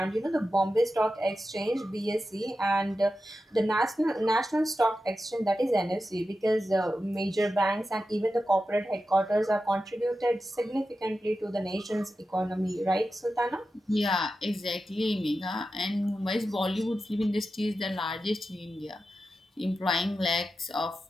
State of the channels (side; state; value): both; normal; correlation 0.91